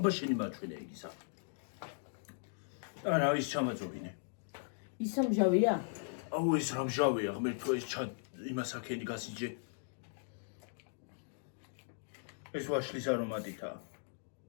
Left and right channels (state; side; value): silent; right; digital silence